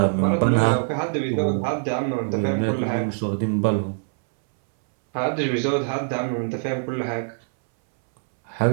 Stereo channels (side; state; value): left; silent; 63 dB below the other